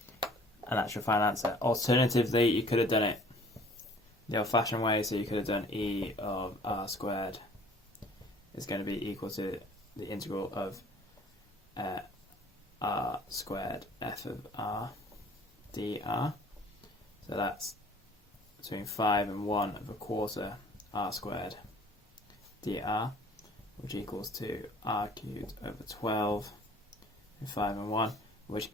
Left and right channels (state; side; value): normal; both; correlation 0.52